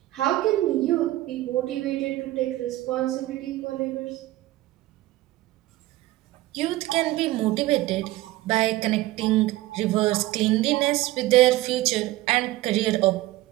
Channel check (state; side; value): quieter; left; 17.0 dB